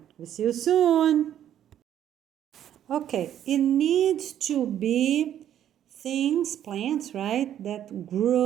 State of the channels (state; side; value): quieter; left; 10.7 dB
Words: We'll see you soon. Okay, it needs to be things, plants, right, that